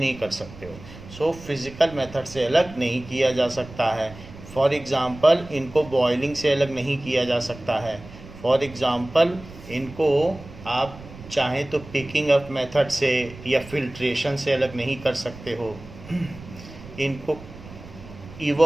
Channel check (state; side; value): noise; right; rumble, 17 dB below the sound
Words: कर सकते हो। सो फिज़िकल मेथड से अलग नहीं किया जा सकता है। फॉर एग्ज़ाम्पल इनको बॉयलिंग से अलग नहीं किया जा सकता है। फॉर एग्ज़ाम्पल इनको आप चाहें तो पिकिंग अप मेथड से या फिल्ट्रेशन से अलग नहीं कर सकते हो। इनको